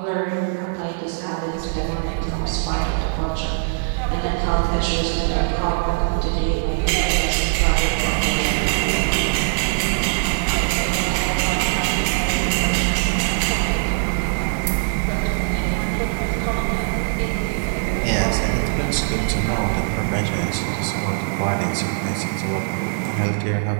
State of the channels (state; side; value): silent; left; digital silence